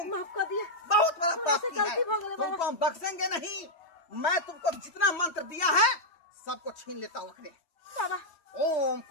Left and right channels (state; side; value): late; right; 3.1 ms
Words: माफ कर दिया बहुत बड़ा हमरा पाप से की है गलती हो गई बाबा तुमको हम बख्शेंगे नहीं मैं तुमको जितना मंत्र दिया है सबको छीन लेता हूँ अखरे बाबा ओम